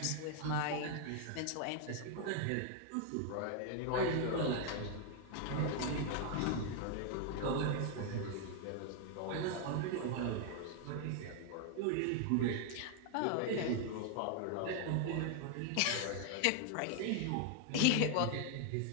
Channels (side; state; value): both; different; correlation 0.00